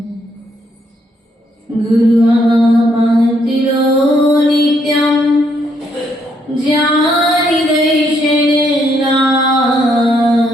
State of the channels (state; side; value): normal; both; correlation 0.73